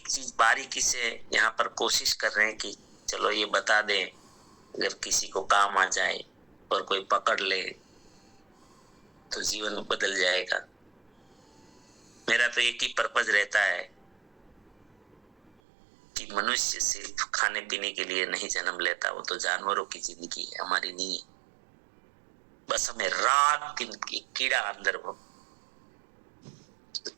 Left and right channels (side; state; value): left; drops out; at 15.5 s